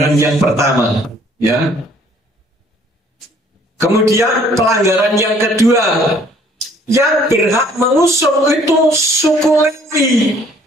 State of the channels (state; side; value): normal; both; correlation 0.59